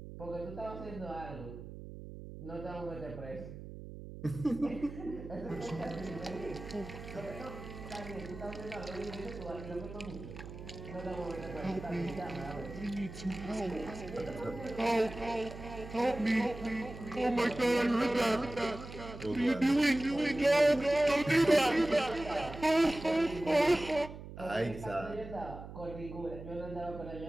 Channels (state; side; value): noise; right; hum, 12 dB below the sound